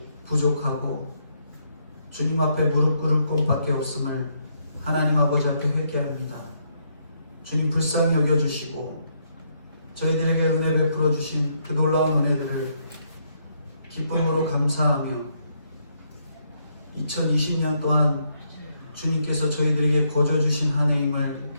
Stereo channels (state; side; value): inverted; both; correlation -0.75